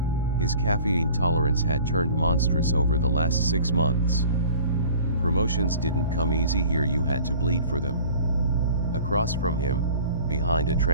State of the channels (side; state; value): both; inverted; correlation -0.46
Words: His caffeine tolerance had turned monstrous over the last 6 months. Promotions didn't come easy here, you had to bleed for them. Across from him, behind a